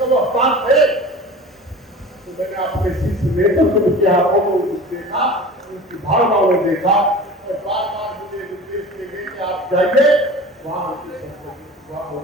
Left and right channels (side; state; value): both; normal; correlation 0.38